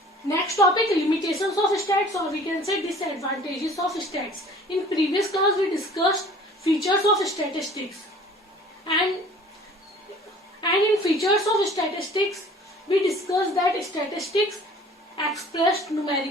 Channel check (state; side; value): normal; both; correlation 0.49